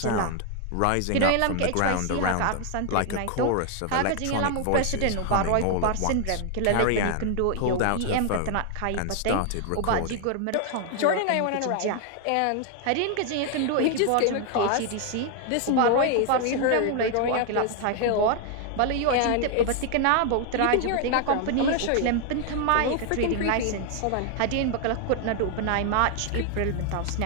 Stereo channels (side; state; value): both; different; correlation 0.00